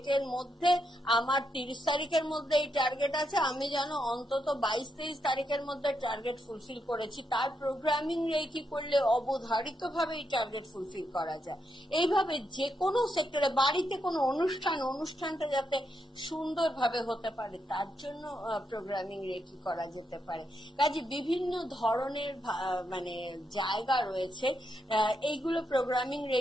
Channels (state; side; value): normal; both; correlation 0.82